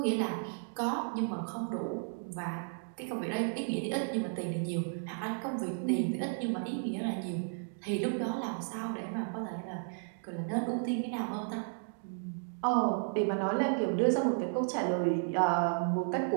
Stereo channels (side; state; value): left; silent; digital silence